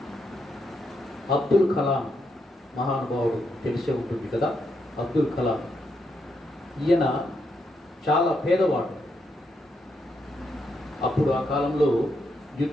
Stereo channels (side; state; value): both; normal; correlation 0.80